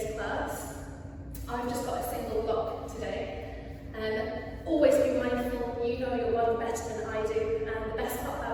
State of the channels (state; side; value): identical; both; correlation 1.00